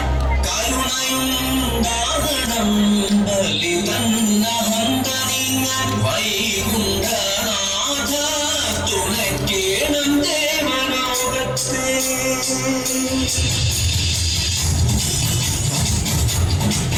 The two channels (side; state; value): both; identical; correlation 1.00